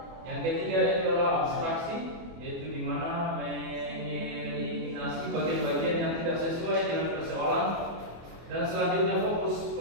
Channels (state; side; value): late; left; 24 ms